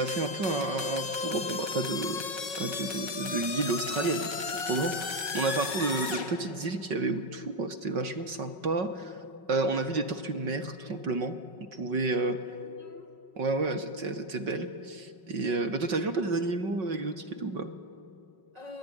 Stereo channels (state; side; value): late; left; 5.4 ms